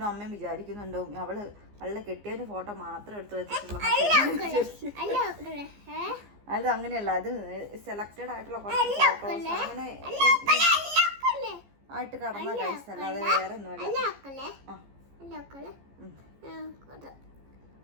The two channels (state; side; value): late; left; 15 ms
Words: അമ്മയും വിചാരിക്കുന്നുണ്ടോ അവള് കെട്ടിയതിന്റെ ഫോട്ടോ മാത്രം എടുത്തു വെച്ചിട്ടുള്ള. അത് അങ്ങനെയല്ല, അത് സെലക്റ്റഡ് ആയിട്ടുള്ള കുറച്ച് ഫോട്ടോസ് അങ്ങനെ ആയിട്ട് കടന്ന കഴിച്ച, അല്ലാതെ വേറെ ഒന്നുമല്ല.